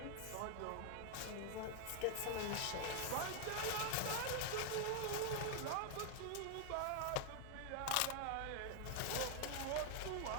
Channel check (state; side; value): different; both; correlation 0.00